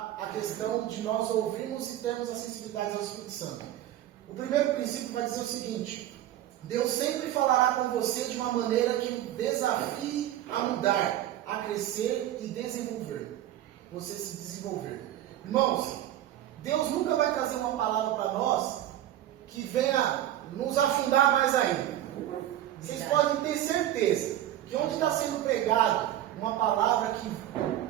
a questão de nós ouvirmos e termos a sensibilidade ao Espírito Santo. O primeiro princípio vai dizer o seguinte: Deus sempre falará com você de uma maneira que o desafie a mudar, a crescer e desenvolver. Você se desenvolver. Irmãos, Deus nunca vai trazer uma palavra para nós que venha nos afundar mais ainda. Vocês podem ter certeza que onde está sendo pregado uma palavra que...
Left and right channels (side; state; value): left; quieter; 12.7 dB